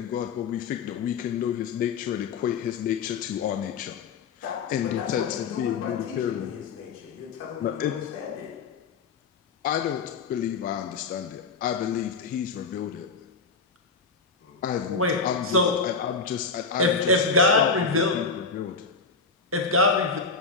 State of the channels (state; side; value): quieter; right; 4.7 dB